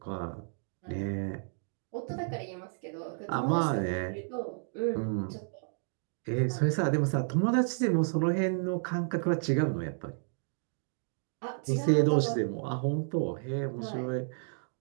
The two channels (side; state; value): left; silent; digital silence